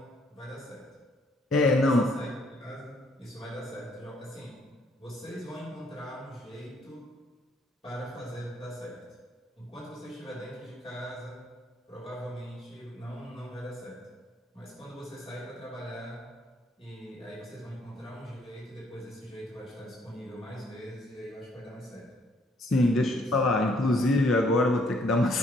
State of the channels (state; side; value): normal; both; correlation 0.67